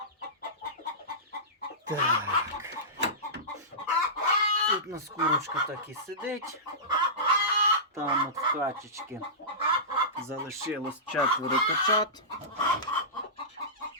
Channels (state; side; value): normal; both; correlation -0.19